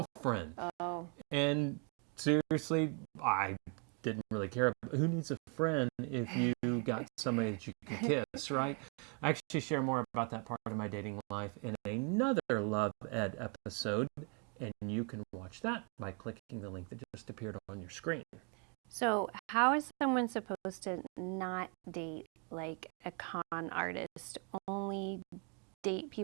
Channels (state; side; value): quieter; left; 37.2 dB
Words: Oh. And seriously, I didn't really care. Who needs a friend if you got somebody that you can kiss, right? I actually share more about that part of my dating life in another Love Ed episode, and you can watch that by clicking the link that just appeared on your screen. So how is someone supposed to not date like a con artist, only date